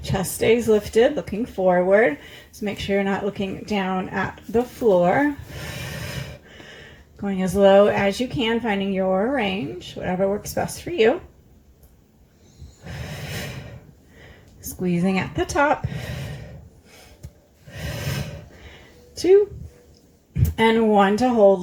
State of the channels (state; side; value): identical; both; correlation 1.00